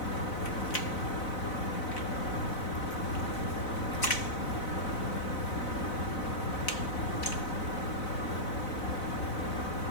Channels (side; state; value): right; late; 4.0 ms